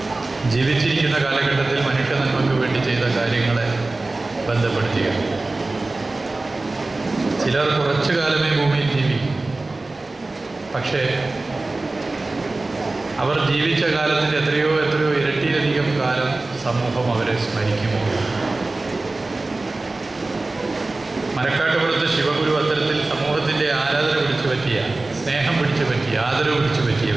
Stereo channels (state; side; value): quieter; left; 3.1 dB